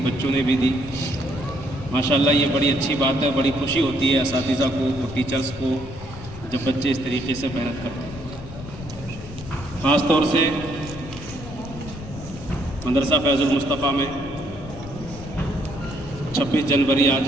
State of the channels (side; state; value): left; noise; rumble, 13 dB below the sound